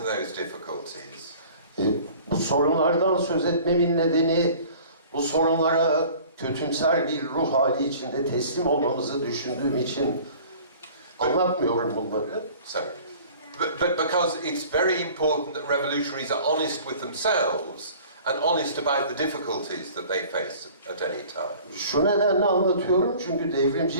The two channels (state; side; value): inverted; both; correlation -0.47